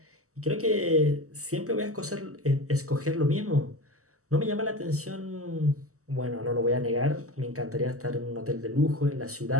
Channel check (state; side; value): late; left; 0.65 ms